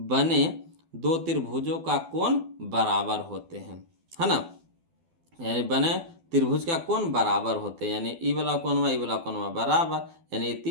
दो त्रिभुजों का कोण बराबर होते हैं, है ना, यानी बने त्रिभुज का कोण बराबर होते हैं, यानी ई वाला कोणमा बराबर, यानी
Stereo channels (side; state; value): left; late; 12 ms